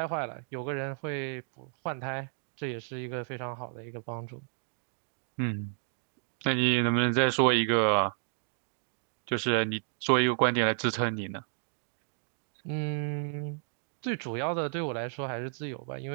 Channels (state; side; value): silent; left; digital silence